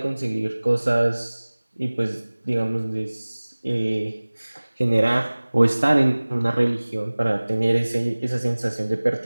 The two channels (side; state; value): both; inverted; correlation -1.00